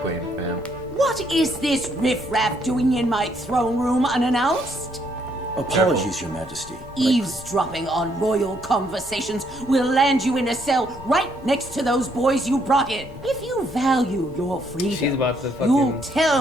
Queen, fam. What is this riffraff doing in my throne room unannounced? Apologies, Your Majesty. Eavesdropping on royal conversations will land you in a cell right next to those boys you brought in. If you value your freedom, She's about to you'll fucking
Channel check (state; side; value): noise; left; rumble, 22 dB below the sound